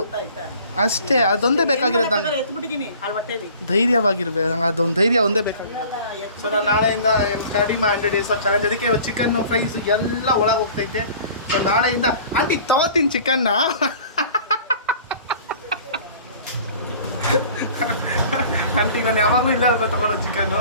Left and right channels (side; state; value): both; inverted; correlation -0.47